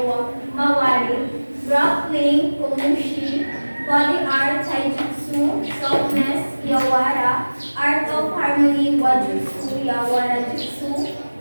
mawari, grappling, kumushi, body art, taijutsu, softness, yawara, art of harmony, wajutsu, yawara jutsu,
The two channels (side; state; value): both; inverted; correlation -1.00